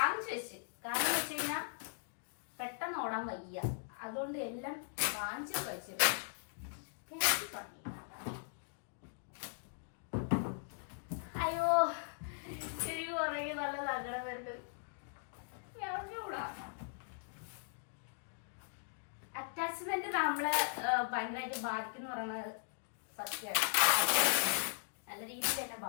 വെച്ച്. കാരണം വെച്ച് കഴിഞ്ഞാൽ പെട്ടെന്ന് ഓടാൻ വയ്യ, അതുകൊണ്ട് എല്ലാം വാങ്ങിച്ചു വെച്ചിട്ട് അയ്യോ എനിക്ക് കുറേ നല്ല സങ്കടം വരുന്നത്. അറ്റാച്ച്മെന്റ് നമ്മളെ ഭയങ്കരമായിട്ട് ബാധിക്കുന്നു പറയുന്നത് സത്യമാണ്, നല്ല രീതിയിൽ തന്നെ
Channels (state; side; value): silent; right; digital silence